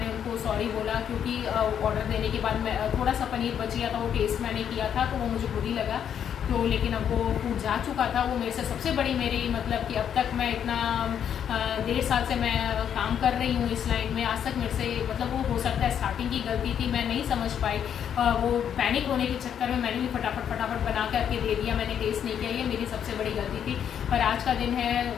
उनको सॉरी बोला, क्योंकि ऑर्डर देने के बाद मैं थोड़ा सा पनीर बच गया था, वो टेस्ट मैंने किया था तो वो मुझे बुरी लगा। तो लेकिन अब वो फूड जा चुका था। वो मेरे से सबसे बड़ी मेरी मतलब कि अब तक मैं इतना 1.5 साल से मैं काम कर रही हूँ इस लाइन में, आज तक मेरे से मतलब वो हो सकता है स्टार्टिंग की गलती थी, मैं नहीं समझ पाई। वो पैनिक होने के चक्कर में मैंने भी फटाफट बना करके दे दिया, मैंने टेस्ट नहीं किया, ये मेरी सबसे बड़ी गलती थी। पर आज का दिन है,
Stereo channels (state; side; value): quieter; right; 8.8 dB